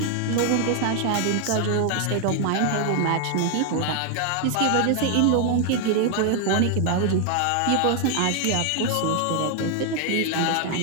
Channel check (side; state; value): both; different; correlation 0.00